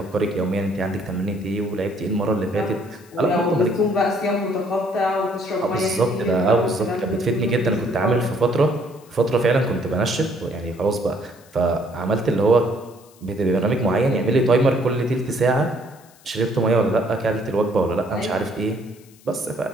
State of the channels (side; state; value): left; noise; hiss, 27 dB below the sound